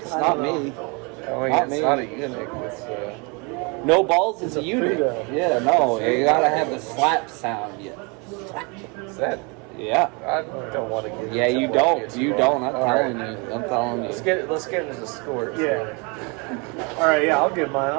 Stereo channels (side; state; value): left; quieter; 31.1 dB